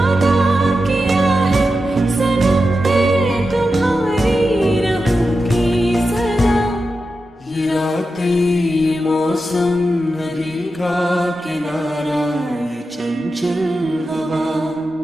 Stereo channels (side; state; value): both; normal; correlation 0.90